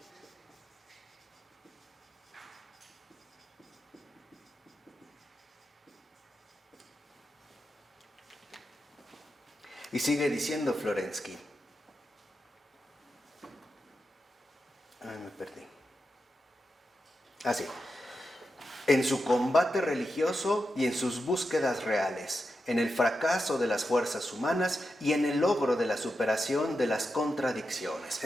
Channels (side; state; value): both; normal; correlation 0.88